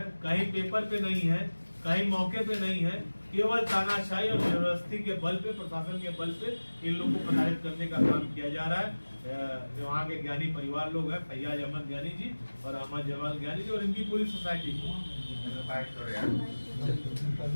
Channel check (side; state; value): both; inverted; correlation -1.00